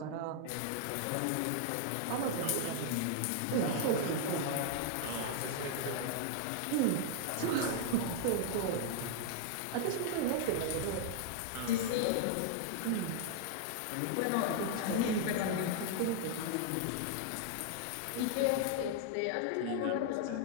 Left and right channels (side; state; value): both; different; correlation 0.00